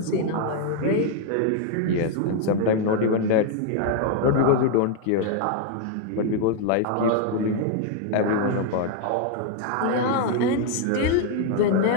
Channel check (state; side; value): different; both; correlation 0.00